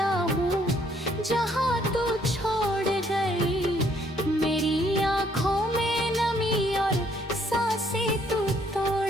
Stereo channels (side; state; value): both; normal; correlation 0.66